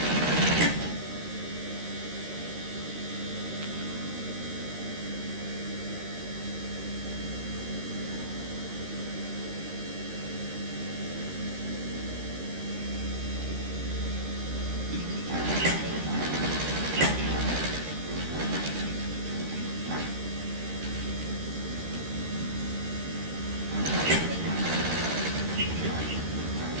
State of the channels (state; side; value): late; left; 13 ms